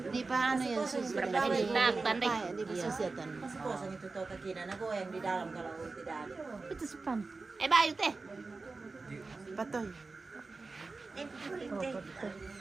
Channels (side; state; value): left; quieter; 3.8 dB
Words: Di paano yan susunod? Tandai. Di susunod. Kosong itu tahu kekina, nago yang di dalam kalau tidak ada. Itu sepan. Bayo teh. Patoy.